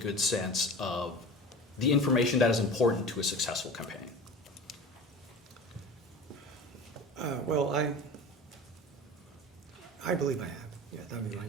sense of the information that is important to a successful campaign? Well, I believe I have. Yeah, that would be my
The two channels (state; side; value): normal; both; correlation 0.34